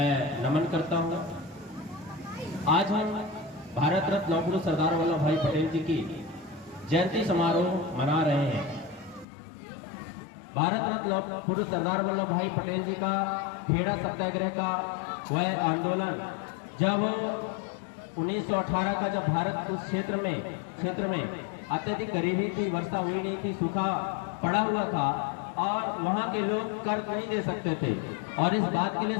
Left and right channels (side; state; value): right; drops out; at 9.2 s